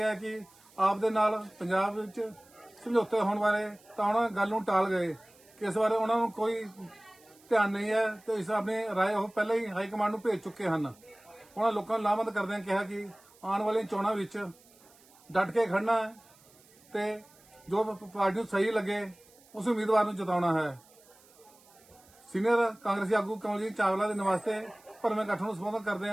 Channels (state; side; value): noise; right; hiss, 27 dB below the sound